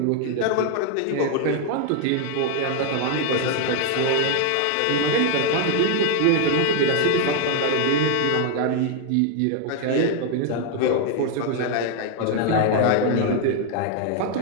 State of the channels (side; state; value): both; different; correlation 0.00